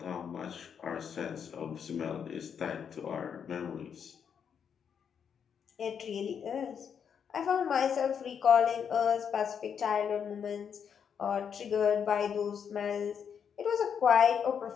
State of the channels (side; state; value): right; quieter; 7.4 dB